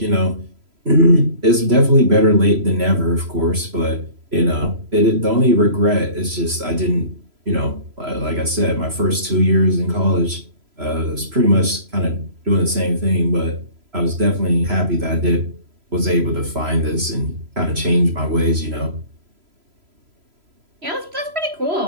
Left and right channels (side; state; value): left; late; 3.0 ms